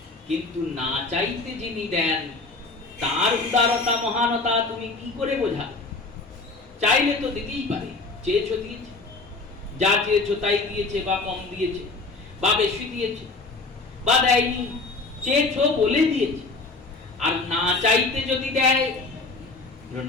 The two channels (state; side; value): quieter; right; 3.6 dB